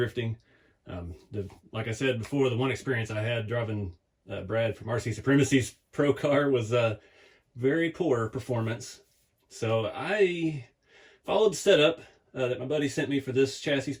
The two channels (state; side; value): identical; both; correlation 1.00